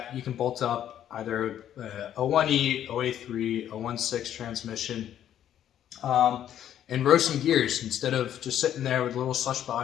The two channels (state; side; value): quieter; right; 10.7 dB